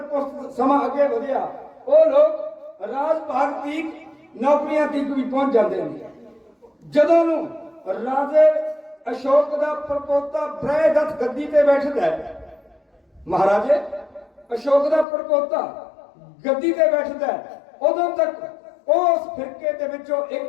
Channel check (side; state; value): right; drops out; at 15.1 s